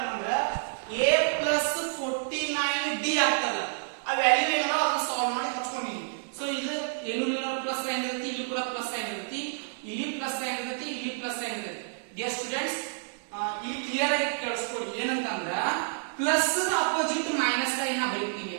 ಅಂದ್ರೆ a plus 49d ಆಗ್ತದೆ. ಆ value ಏನಲ್ಲ ಅದನ್ನ solve ಮಾಡಿ ಹಚ್ಕೊಂಡಿನಿ. ಸೊ ಇದು ಏನು ಪ್ಲಸ್ ಸೈನ್ ಇರುತ್ತೆ, ಇಲ್ಲಿ ಕೂಡ ಪ್ಲಸ್ ಸೈನ್ ಇರುತ್ತೆ, ಇಲ್ಲಿ ಪ್ಲಸ್ ಸೈನ್ ಇರುತ್ತೆ, ಇಲ್ಲಿ ಪ್ಲಸ್ ಸೈನ್ ಇರುತ್ತೆ. ಡಿಯರ್ ಸ್ಟೂಡೆಂಟ್ಸ್, ಇಲ್ಲಿ ಕ್ಲಿಯರ್ ಆಗಿ ಕೇಳಿಸ್ಕೊಳ್ಳಿ. ಏನಂತಂದ್ರ ಪ್ಲಸ್ ಅಪೋಸಿಟ್ ಮೈನಸ್ ಸೈನ್ ಬರೀತೀವಿ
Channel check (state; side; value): silent; left; digital silence